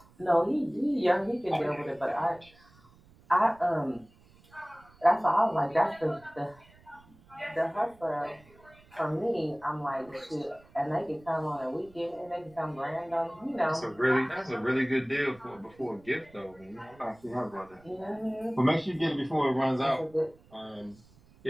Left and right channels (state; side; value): noise; right; rumble, 27 dB below the sound